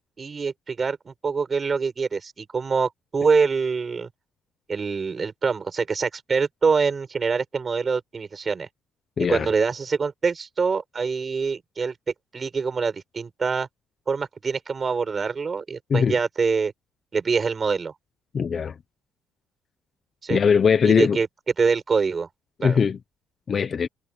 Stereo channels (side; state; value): both; normal; correlation 0.86